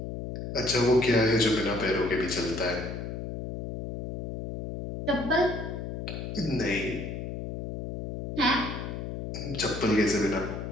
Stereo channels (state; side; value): noise; left; hum, 6 dB below the sound